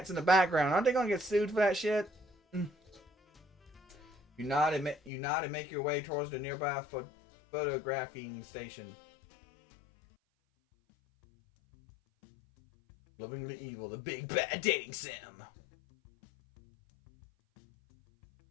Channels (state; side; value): drops out; right; at 5.1 s